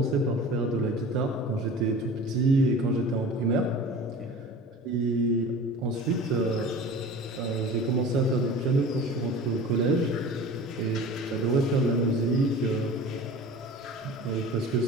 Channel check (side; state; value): both; normal; correlation 0.38